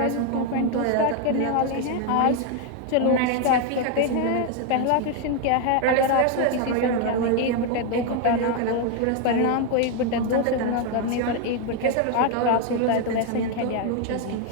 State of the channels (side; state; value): both; different; correlation 0.01